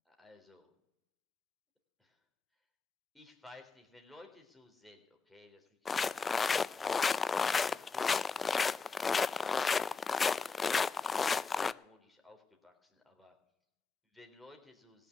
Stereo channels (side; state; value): right; quieter; 4.8 dB